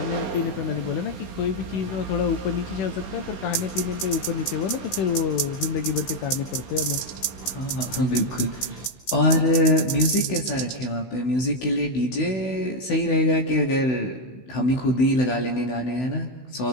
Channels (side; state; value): right; late; 16 ms